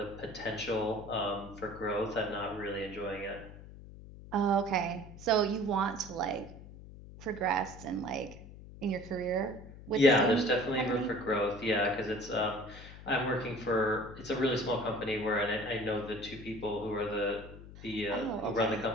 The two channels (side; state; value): left; noise; hum, 16 dB below the sound